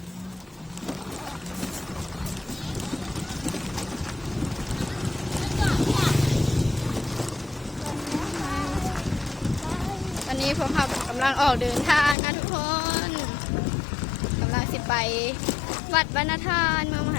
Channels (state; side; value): drops out; right; at 12.2 s